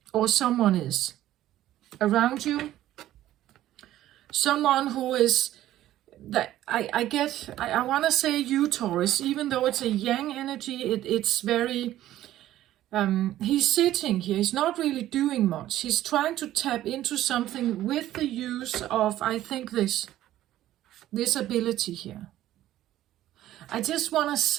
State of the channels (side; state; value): left; quieter; 13.6 dB